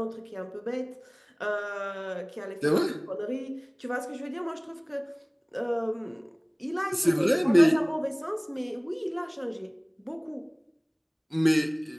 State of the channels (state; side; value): identical; both; correlation 1.00